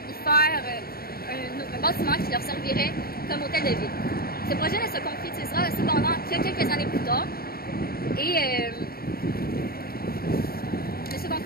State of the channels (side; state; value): right; late; 0.44 ms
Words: faire un bâtiment qui leur servirait comme hôtel de ville. Ce projet ne se concrétisera cependant que quelques années plus tard et ne se